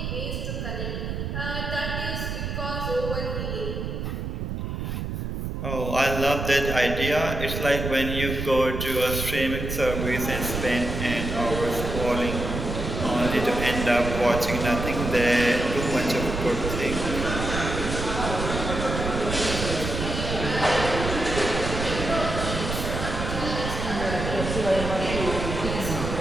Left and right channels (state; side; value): noise; right; rumble, 4 dB below the sound